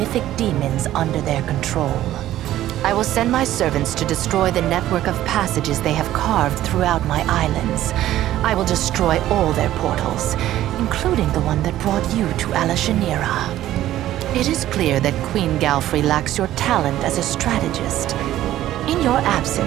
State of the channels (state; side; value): quieter; left; 13.6 dB